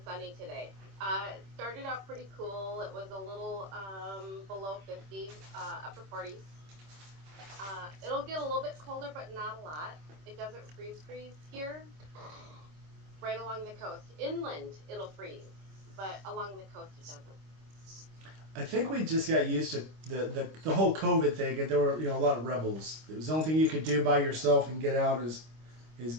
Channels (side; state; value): left; late; 25 ms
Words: sunny today. It started out pretty cool. It was a little below 50, upper 40s. It'll get a little bit colder, but not a lot. It doesn't freeze here. Right along the coast. Inland, it'll freeze, but along the coast, it doesn't. I think we just got used to the whole COVID thing, and there were a lot of rebels. It was the only thing you could do by yourself and get out is